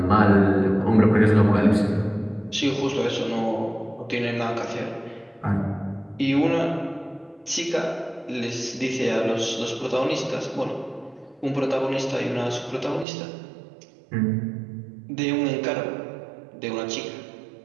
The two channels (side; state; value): left; drops out; at 13.1 s